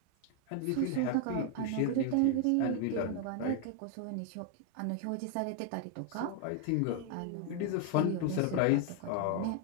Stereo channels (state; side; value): different; both; correlation 0.00